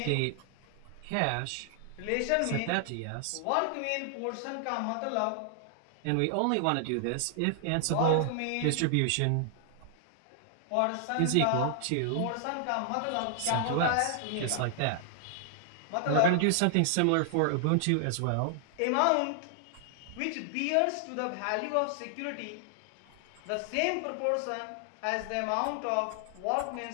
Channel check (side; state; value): both; different; correlation 0.00